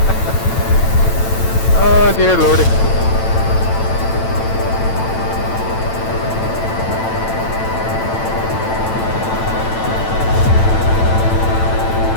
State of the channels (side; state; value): right; late; 9.0 ms